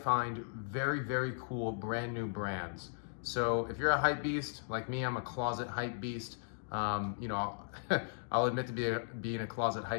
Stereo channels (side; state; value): right; silent; digital silence